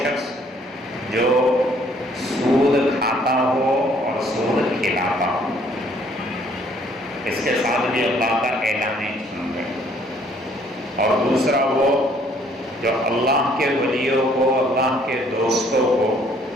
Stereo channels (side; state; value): both; normal; correlation 0.62